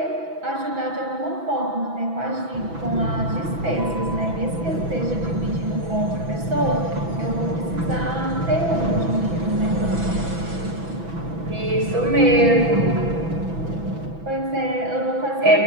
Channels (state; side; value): late; left; 6.1 ms